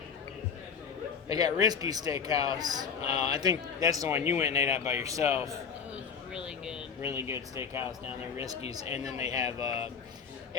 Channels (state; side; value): quieter; right; 6.5 dB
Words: They got Risky Steakhouse. I think that's the one you went and ate at by yourself. It was really good. Really good steakhouse down there, Risky's. And then they have,